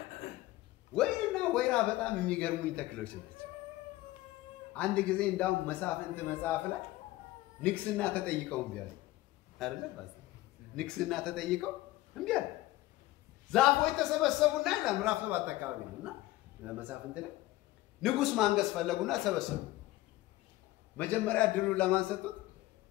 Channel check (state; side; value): quieter; right; 17.3 dB